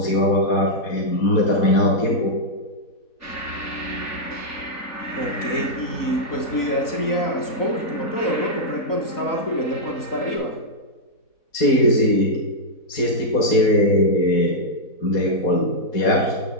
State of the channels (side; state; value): right; late; 4.1 ms